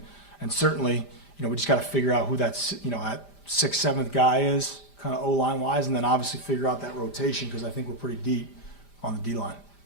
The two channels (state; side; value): late; right; 5.0 ms